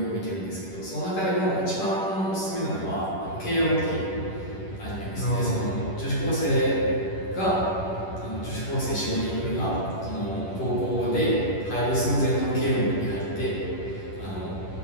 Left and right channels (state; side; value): late; right; 10 ms